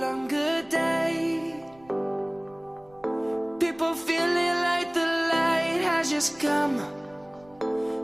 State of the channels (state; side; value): noise; right; rumble, 27 dB below the sound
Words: longer day. People feeling like the light has just come.